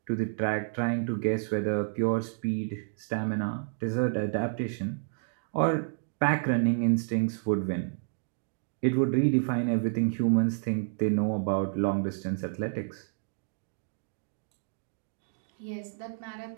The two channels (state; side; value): silent; left; digital silence